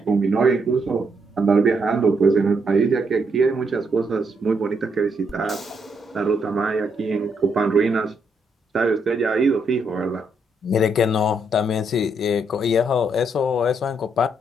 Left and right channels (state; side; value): normal; both; correlation 0.76